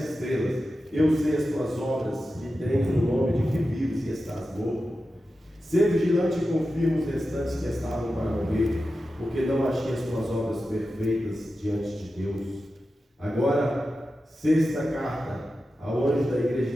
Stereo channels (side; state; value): both; normal; correlation 0.92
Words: estrelas. Eu sei as tuas obras, que tens o nome de que vives e estás morto. Sê vigilante e confirma os restantes que estavam para morrer, porque não achei as tuas obras perfeitas diante de Deus. Agora, sexta carta, ao anjo da igreja